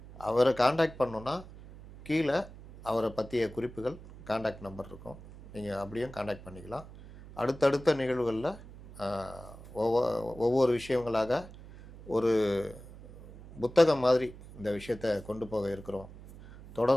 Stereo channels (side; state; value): right; noise; hum, 17 dB below the sound